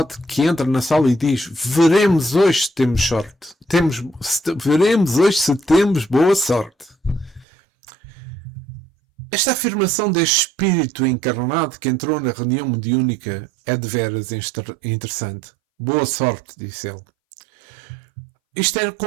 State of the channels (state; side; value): drops out; left; at 7.5 s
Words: que entra na sala e diz: veremos hoje se temos sorte. Veremos hoje se temos boa sorte. Esta afirmação deste espírito encarnado que entrou na reunião mediúnica é de veras interessante. Boa sorte, disse ele. Isto é